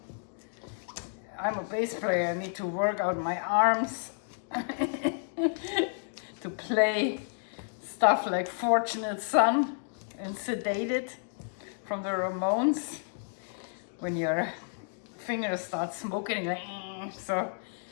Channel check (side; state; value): right; silent; digital silence